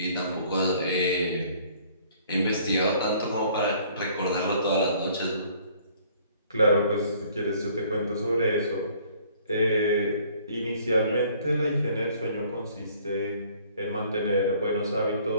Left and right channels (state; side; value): inverted; both; correlation -0.58